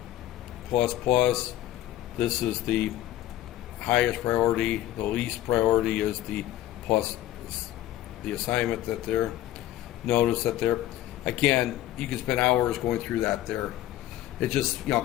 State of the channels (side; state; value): right; quieter; 13.8 dB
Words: Plus plus. This is the highest priority. The least priority is the plus the assignment that there. Notice that there. Again, you can spend hours going through that there. It's just,